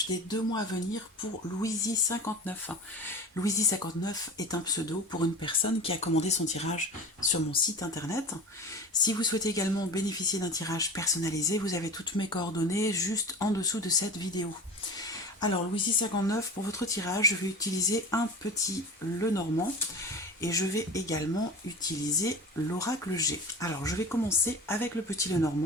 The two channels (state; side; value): normal; both; correlation 0.34